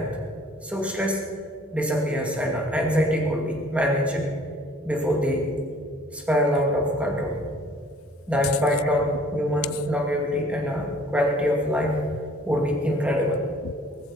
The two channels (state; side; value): normal; both; correlation 0.54